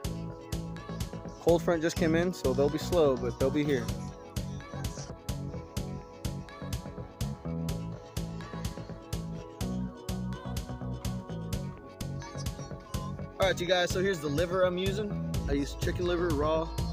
Cold front just came in, so they'll be slow, but they'll be here. All right, you guys, so here's the liver I'm using. I use chicken liver raw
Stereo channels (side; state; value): both; identical; correlation 1.00